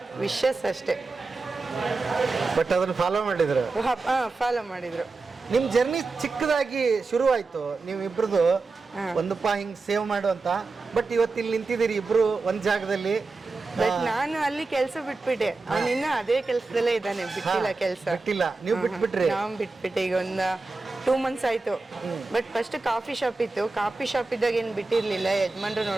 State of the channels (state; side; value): quieter; left; 3.8 dB